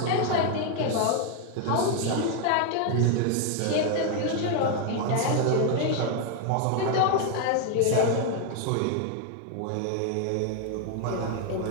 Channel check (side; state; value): both; different; correlation 0.00